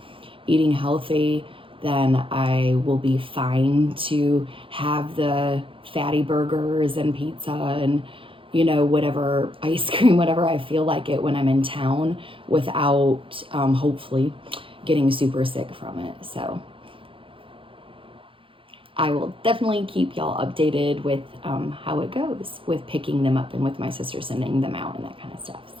eating healthy, then I will be fine to have the fatty burgers and pizza and, you know, whatever, ice cream, whatever I feel like it when I'm in town without, hopefully getting super sick from it. So I will definitely keep y'all updated with how it goes with picking them up and with my sister sending them out and that kind of stuff.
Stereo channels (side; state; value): left; late; 0.25 ms